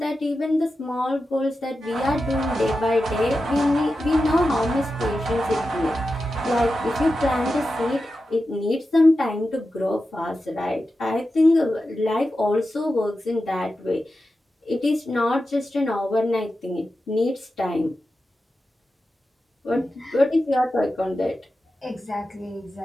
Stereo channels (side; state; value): both; normal; correlation 0.91